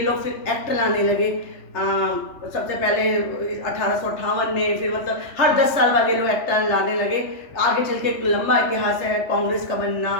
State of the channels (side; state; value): right; late; 3.2 ms